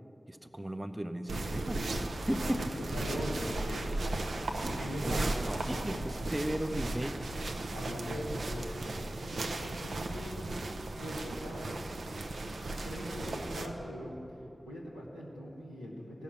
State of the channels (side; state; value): both; normal; correlation 0.94